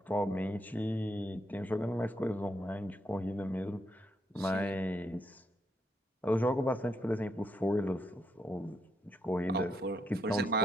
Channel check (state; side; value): normal; both; correlation 0.78